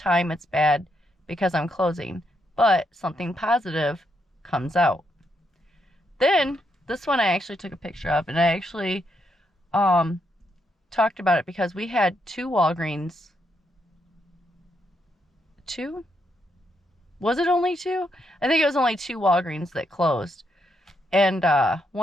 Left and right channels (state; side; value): normal; both; correlation 0.79